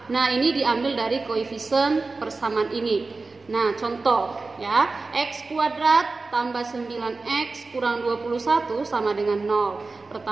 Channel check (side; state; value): left; quieter; 3.8 dB